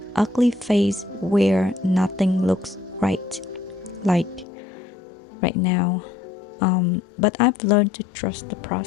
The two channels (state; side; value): drops out; right; at 4.5 s